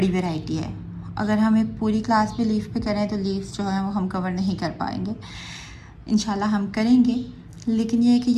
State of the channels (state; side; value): identical; both; correlation 1.00